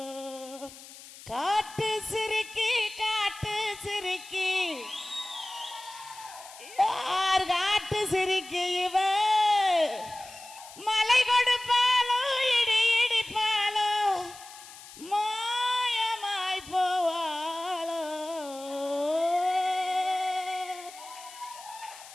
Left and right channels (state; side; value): noise; left; hiss, 17 dB below the sound